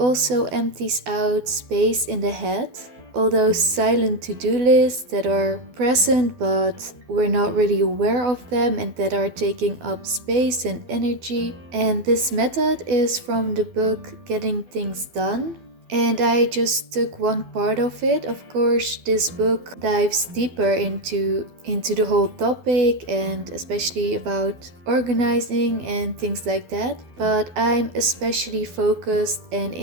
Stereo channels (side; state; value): left; late; 12 ms